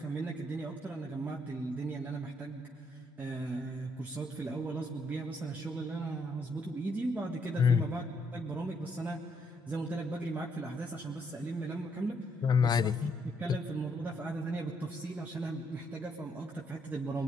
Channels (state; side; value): normal; both; correlation 0.74